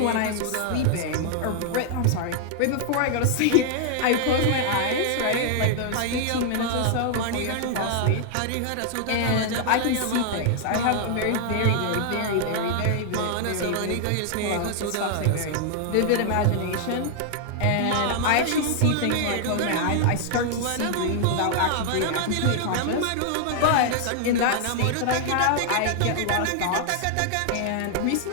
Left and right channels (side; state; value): both; different; correlation 0.00